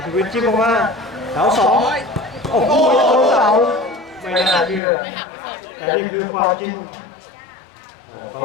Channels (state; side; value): drops out; right; at 4.8 s